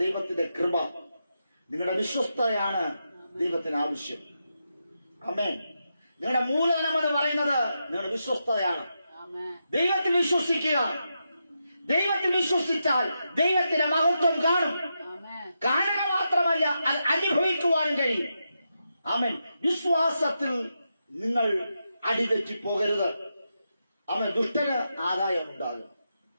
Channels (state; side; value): inverted; both; correlation -0.86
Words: ദൈവത്തിന്റെ കൃപ. നിങ്ങളുടെ വിശ്വസ്തയാണ് ദൈവത്തിന് ആവശ്യം. ആമേൻ. നിങ്ങളുടെ മൂലധനം എന്ന് പറയുന്നത് നിങ്ങളുടെ വിശ്വസ്തയാണ്. ദൈവത്തിൽ വിശ്വസിക്കുക. ദൈവത്തിൽ വിശ്വസിച്ചാൽ ദൈവത്തിന്റെ മഹത്വം കാണും. കാണുക മാത്രമല്ല, അത് അനുഭവിക്കുവാനും കഴിയും. ആമേൻ. വിശ്വാസത്തിൽ നിങ്ങൾ അടിതെറ്റി പോകരുത്. അവൻ ദുഷ്ടന് ആദായം ഉണ്ടാകും.